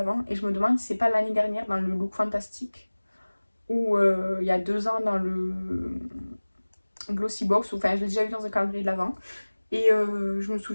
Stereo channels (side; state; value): both; inverted; correlation -1.00